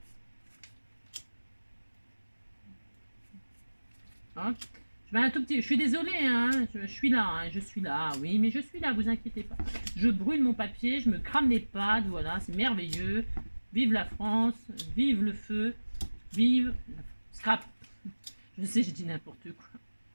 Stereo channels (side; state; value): both; inverted; correlation -1.00